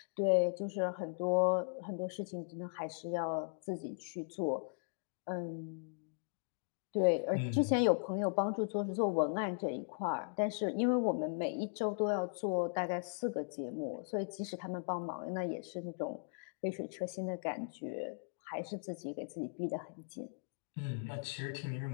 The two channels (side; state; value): right; silent; digital silence